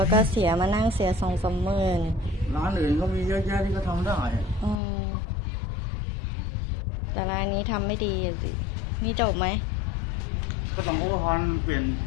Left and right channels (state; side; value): drops out; right; at 4.8 s